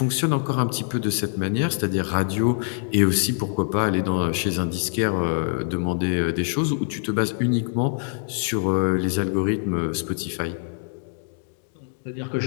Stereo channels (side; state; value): right; silent; digital silence